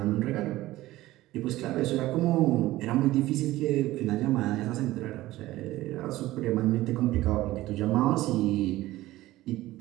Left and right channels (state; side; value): quieter; left; 16.7 dB